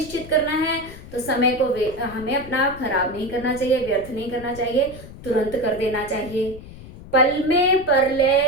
करना है तो समय को हमें अपना खराब नहीं करना चाहिए, व्यर्थ नहीं करना चाहिए, तुरंत कर देना चाहिए। पल में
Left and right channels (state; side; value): noise; left; rumble, 16 dB below the sound